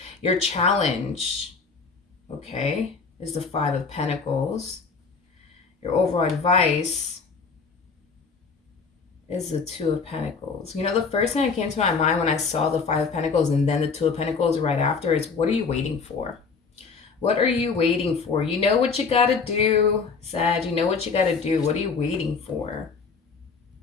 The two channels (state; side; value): quieter; right; 5.0 dB